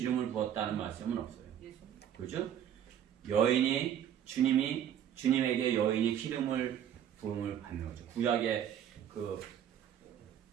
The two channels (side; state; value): left; quieter; 9.8 dB